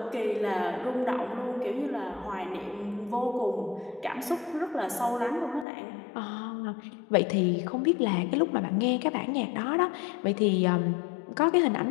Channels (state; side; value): drops out; right; at 5.7 s